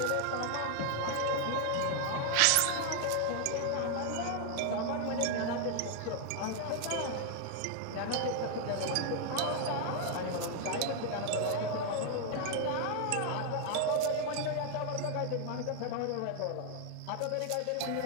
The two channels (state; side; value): different; both; correlation 0.00